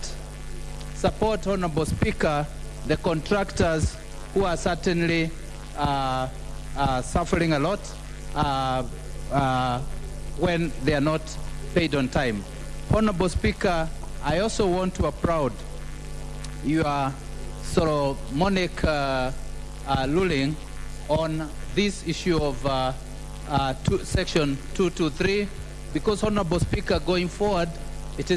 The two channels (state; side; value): identical; both; correlation 1.00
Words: Honorable Speaker, the contractors who are certainly suffering a lot when they are not paid on time. Honorable Speaker, I also want to applaud your Solomonic ruling on this issue of Section 223, because, Honorable Speaker, going forward, it